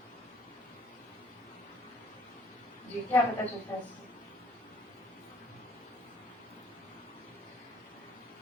جی کیا پتا چلتا ہے اس سے؟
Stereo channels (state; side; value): normal; both; correlation 0.58